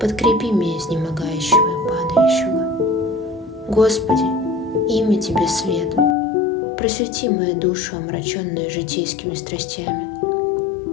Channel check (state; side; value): drops out; right; at 6.2 s